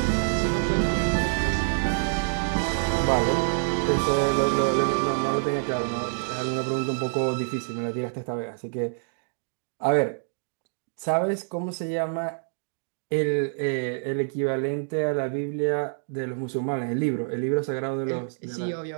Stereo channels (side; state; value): left; silent; digital silence